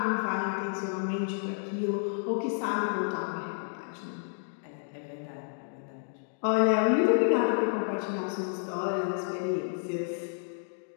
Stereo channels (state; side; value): silent; right; digital silence